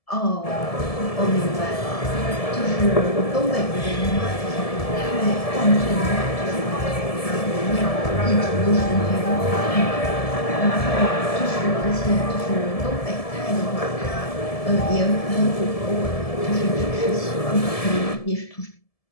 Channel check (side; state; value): right; late; 1.7 ms